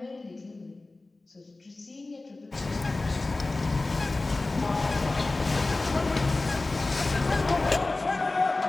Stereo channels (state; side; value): quieter; right; 3.2 dB